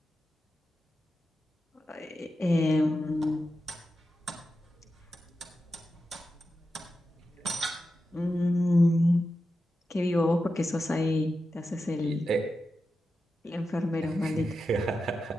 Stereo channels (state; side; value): normal; both; correlation 0.90